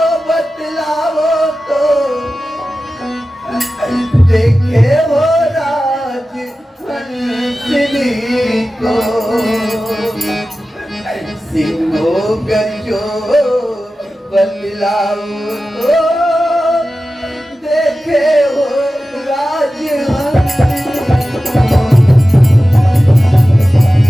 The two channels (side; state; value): both; normal; correlation 0.94